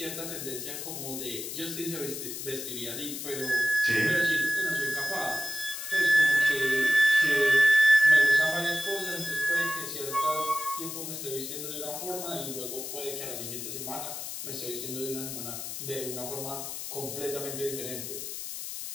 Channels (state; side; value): noise; left; hiss, 7 dB below the sound